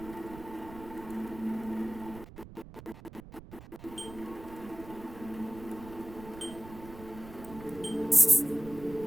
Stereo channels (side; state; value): right; noise; rumble, 16 dB below the sound